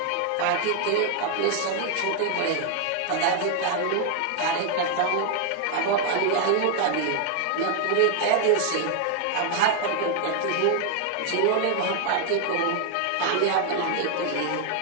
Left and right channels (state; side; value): different; both; correlation 0.00